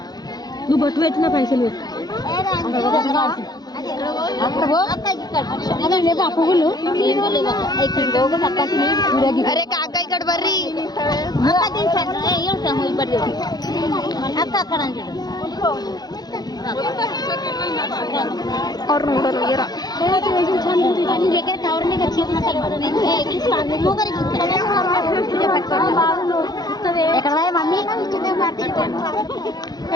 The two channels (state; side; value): late; right; 0.19 ms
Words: నువ్వు బొట్టు పెట్టిన పైసలు పెట్టు పువ్వులు అరే కాక ఇక్కడ ಬರ್ರಿ అక్క అక్కడ ಅವ್ರು ನೋಡೋರು ఎక్కడ మమ్మీ